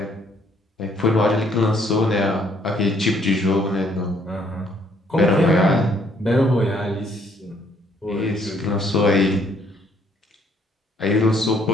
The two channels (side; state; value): both; normal; correlation 0.66